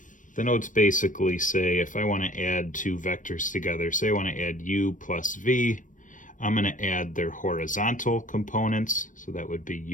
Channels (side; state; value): right; late; 0.38 ms